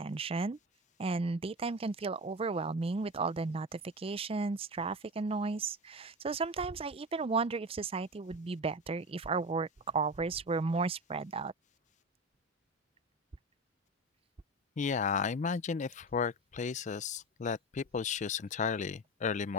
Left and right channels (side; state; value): both; normal; correlation 0.26